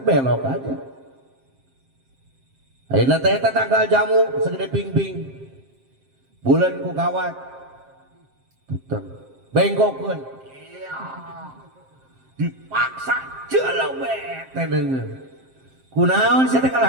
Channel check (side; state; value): left; late; 7.6 ms